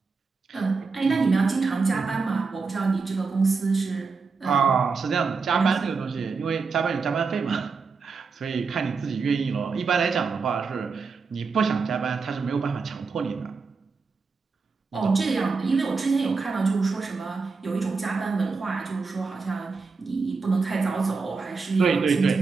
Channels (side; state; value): left; quieter; 4.7 dB